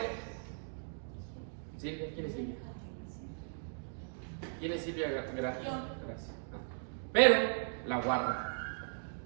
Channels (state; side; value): silent; left; digital silence